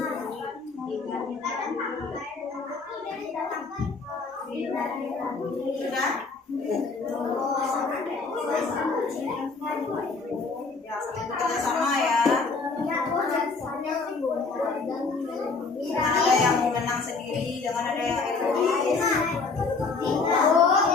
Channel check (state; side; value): quieter; right; 4.2 dB